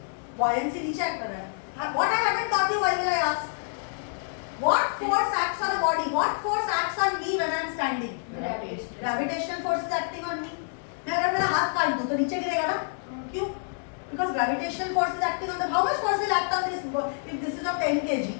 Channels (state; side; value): silent; right; digital silence